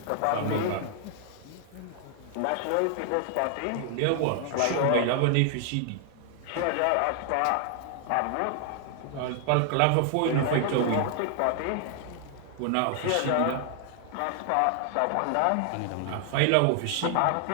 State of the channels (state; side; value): different; both; correlation 0.00